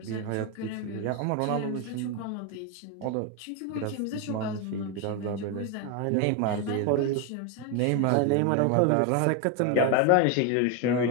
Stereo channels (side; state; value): both; different; correlation 0.02